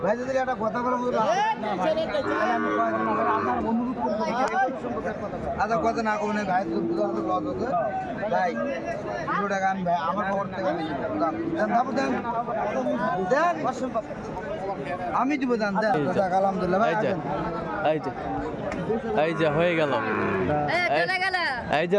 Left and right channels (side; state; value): both; identical; correlation 1.00